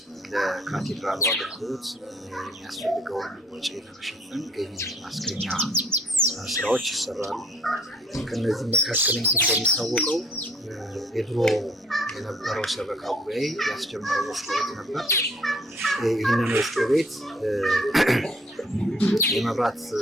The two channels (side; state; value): both; normal; correlation 0.58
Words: ለካቴድራሉ አገልግሎት የሚያስፈልገውን ወጪ ለመሸፈን ገቢ ማስገኛ ስራዎች ይሰራሉ። ከነዚህ መካከል እንግዲህ እንደሚታወቀው የድሮ የነበረው ሰበካ ጉባኤ ያስጀመረው ወፍጮ ቤት ነበር። ይህንን ወፍጮ ቤት የመብራት